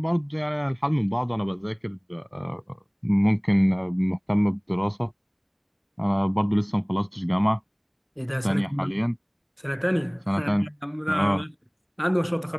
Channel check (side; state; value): both; identical; correlation 1.00